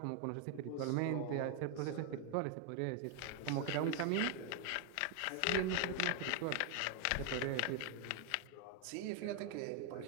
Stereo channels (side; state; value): both; different; correlation 0.01